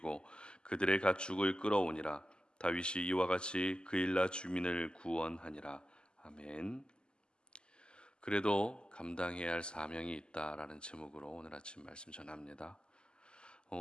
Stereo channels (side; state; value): right; late; 0.049 ms